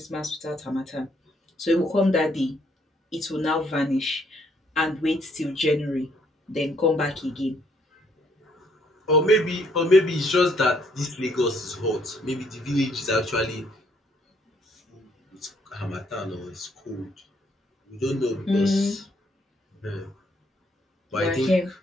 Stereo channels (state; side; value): normal; both; correlation 0.68